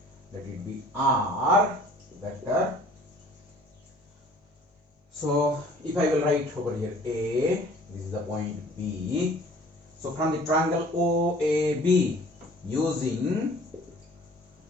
R vector. So if I will write over here A, this is the point B. So from the triangle OAB, using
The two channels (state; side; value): normal; both; correlation 0.51